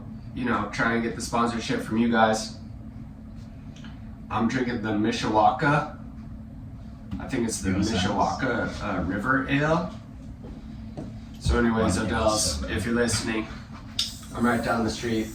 trying to get the sponsorship from you guys. I'm drinking the Mishawaka. I think it's the Go Sounds. Mishawaka River Ale. So anyways, Wow, Odell's, so bad. if you're listening, I'm right down the street.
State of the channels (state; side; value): identical; both; correlation 1.00